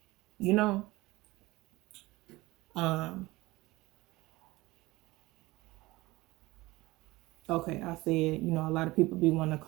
You know? Okay, I said, you know, a lot of people be wanting to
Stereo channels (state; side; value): quieter; left; 20.2 dB